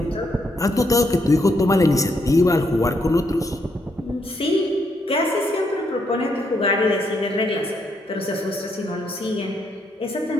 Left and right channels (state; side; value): normal; both; correlation 0.76